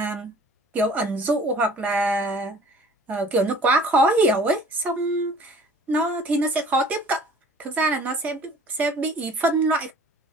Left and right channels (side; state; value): both; normal; correlation 0.50